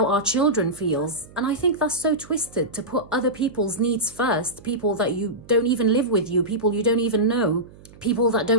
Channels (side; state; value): right; noise; hum, 22 dB below the sound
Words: our children feels. And I think that's so twisted, to put other people's needs first, people that you don't even live with you, people you don't even know, people that